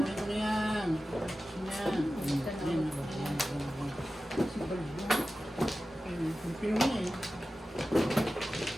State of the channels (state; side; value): normal; both; correlation 0.94